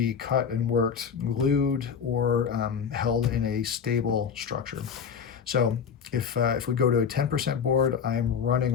cut and worked, glued, or held in a stable structure. So if we go to a 10% board, I'm running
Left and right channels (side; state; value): right; quieter; 6.8 dB